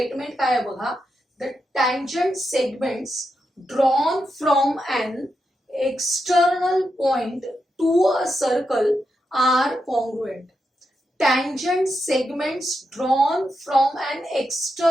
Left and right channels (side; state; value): both; normal; correlation 0.85